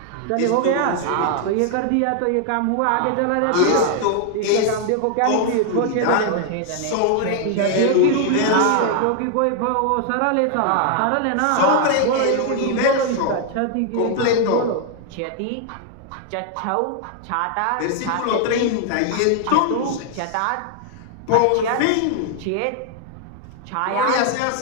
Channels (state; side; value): different; both; correlation 0.00